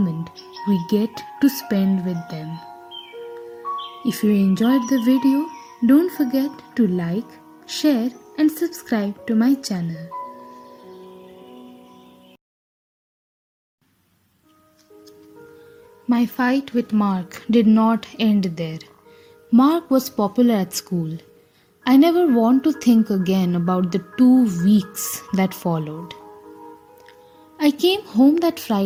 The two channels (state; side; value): identical; both; correlation 1.00